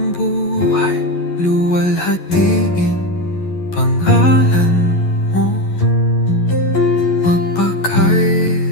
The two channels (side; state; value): right; late; 11 ms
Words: buhay. Luwalhatiin pangalan mo